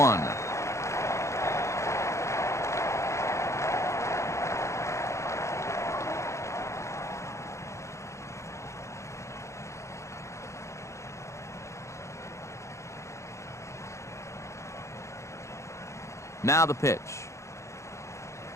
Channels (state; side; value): late; right; 0.14 ms